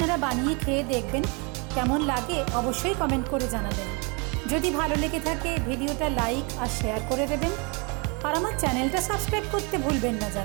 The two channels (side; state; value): left; quieter; 31.6 dB